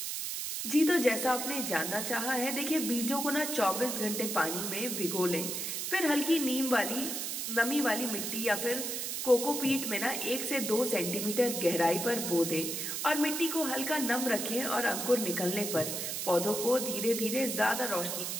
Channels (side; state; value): right; noise; hiss, 3 dB below the sound